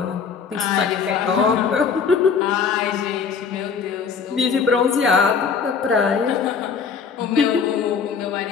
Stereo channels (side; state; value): right; quieter; 6.0 dB